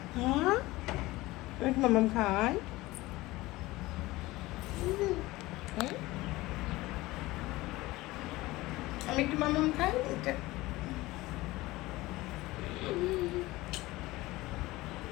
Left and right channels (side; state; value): right; quieter; 19.3 dB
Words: হ্যাঁ আমি মাম্মাম খাই। আমি একটু মাম্মাম খাই। এটা